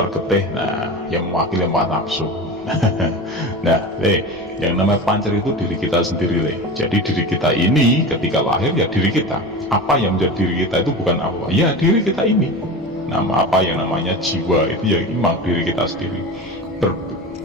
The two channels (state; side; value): normal; both; correlation 0.29